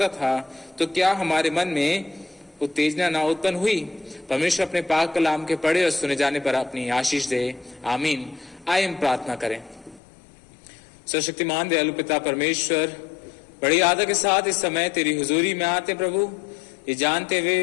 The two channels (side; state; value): right; drops out; at 10.0 s